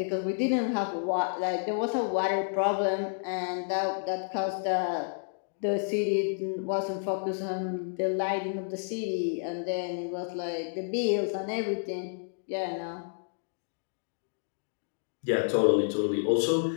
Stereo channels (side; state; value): right; silent; digital silence